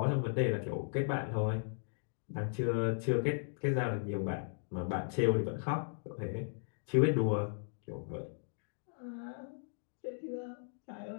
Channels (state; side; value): silent; right; digital silence